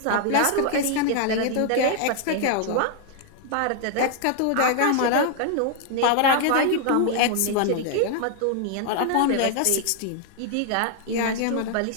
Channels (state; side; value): different; both; correlation 0.00